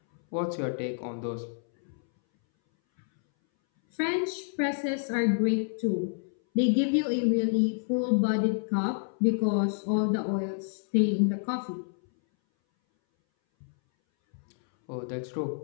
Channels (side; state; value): right; silent; 59 dB below the other